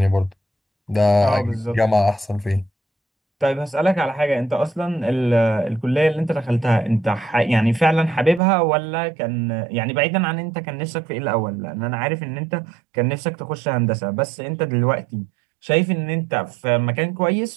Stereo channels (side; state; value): left; drops out; at 8.4 s